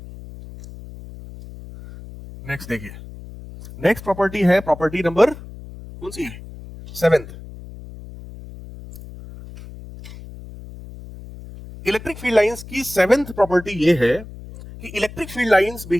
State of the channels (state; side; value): noise; left; hum, 15 dB below the sound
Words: नेक्स्ट देखिए, नेक्स्ट प्रॉपर्टी है प्रॉपर्टी नंबर कौन सी है? 7th। इलेक्ट्रिक फील्ड लाइंस की 7th प्रॉपर्टी ये है कि electric field lines